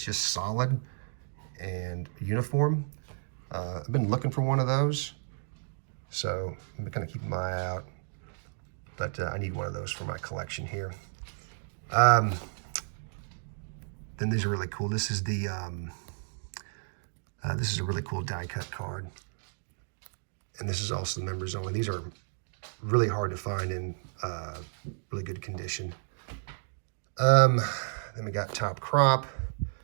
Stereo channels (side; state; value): left; silent; digital silence